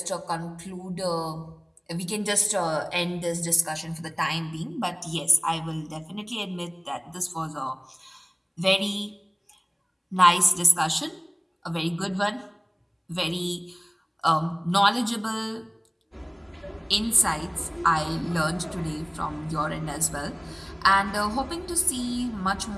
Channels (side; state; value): both; identical; correlation 1.00